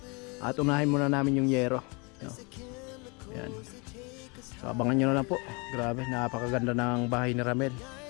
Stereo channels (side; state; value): right; quieter; 30.5 dB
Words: At unahin muna namin yung yero. Ayan. So abangan nyo na lang po. Grabe, napakaganda ng bahay ni Ramel.